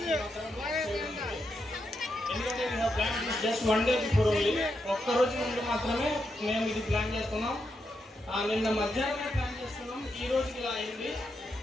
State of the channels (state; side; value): normal; both; correlation 0.83